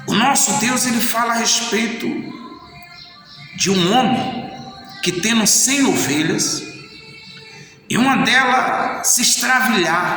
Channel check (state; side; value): identical; both; correlation 1.00